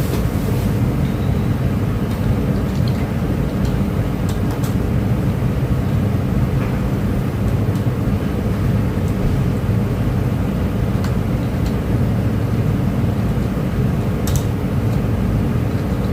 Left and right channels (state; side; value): identical; both; correlation 1.00